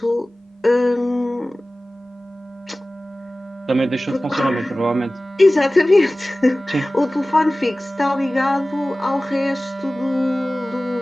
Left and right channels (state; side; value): normal; both; correlation 0.97